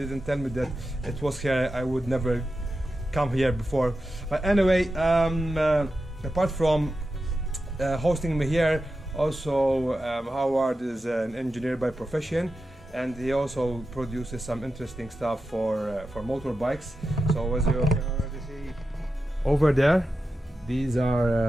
tell me that it was here, I would never come here before. But anyway, apart from hosting me here, also Howard is an engineer by profession, and he also produces some interesting stuff for motorbikes. So as you can already see over there, these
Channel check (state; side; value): normal; both; correlation 0.91